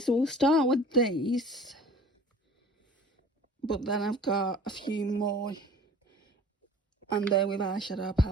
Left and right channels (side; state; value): both; normal; correlation 0.46